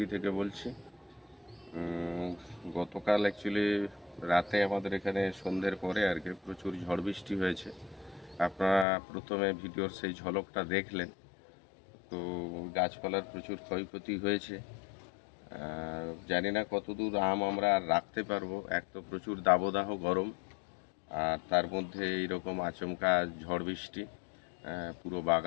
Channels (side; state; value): right; drops out; at 8.8 s